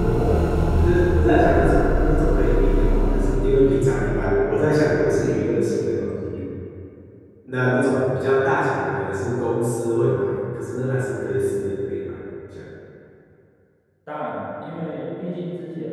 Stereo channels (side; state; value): both; identical; correlation 1.00